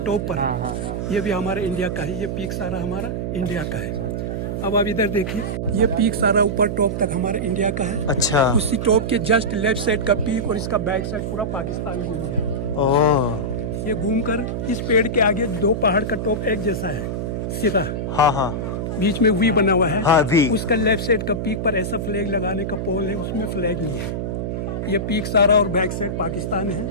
टॉप पर। ये भी हमारे इंडिया का है। ये पीक सारा हमारा इंडिया का है। अब आप इधर देखिए, ये पीक सारा ऊपर टॉप तक हमारे इंडिया का है। अच्छा। उसी टॉप के जस्ट लेफ्ट साइड का पीक और इसका बैक साइड पूरा पाकिस्तान घूम है। ओह, ये घूमकर इस पेड़ के आगे 2 पहाड़ का टॉप एक जैसा है, सिरा। हाँ। बीच में वी बना हुआ है। हाँ, वी। उसका लेफ्ट साइड का पीक पर ऐसा फ्लैग लगाने का पोल है, उसमें फ्लैग नहीं है। ये पीक सारा और बैक साइड पाकिस्तान है।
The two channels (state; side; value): noise; right; hum, 2 dB below the sound